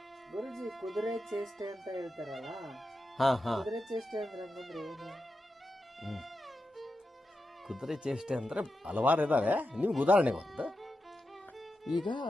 ಗುರುಜಿ, ಕುದುರೆ ಚೇಷ್ಟೆ ಅಂತ ಹೇಳ್ತಾರಲ್ಲ, ಕುದುರೆ ಚೇಷ್ಟೆ ಅಂದ್ರೆ ಏನು? ಕುದುರೆ ಚೇಷ್ಟೆ ಅಂದ್ರೆ ಹಲವಾರು ಇದಾವೆ. ನಿಮ್ಗೆ ಉದಾಹರಣೆ ಒಂದು, ಈಗ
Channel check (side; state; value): both; normal; correlation 0.89